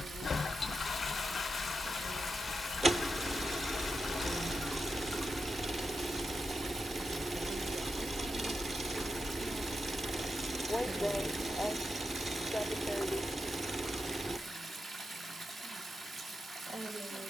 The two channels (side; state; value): both; normal; correlation 0.88